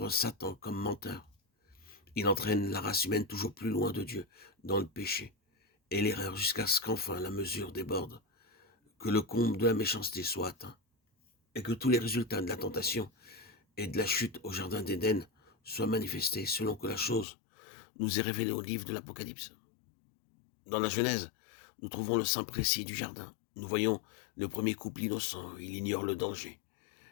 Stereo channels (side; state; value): right; drops out; at 17.2 s